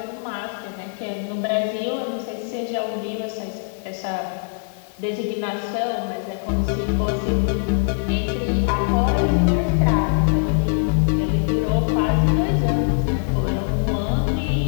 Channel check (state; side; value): silent; right; digital silence